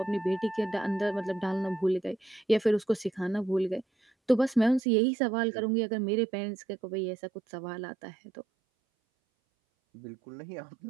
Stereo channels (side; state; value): left; drops out; at 4.8 s